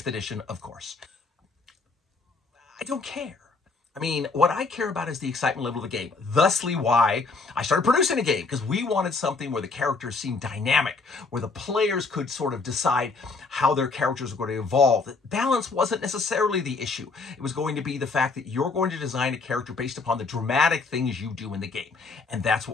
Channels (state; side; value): quieter; right; 4.1 dB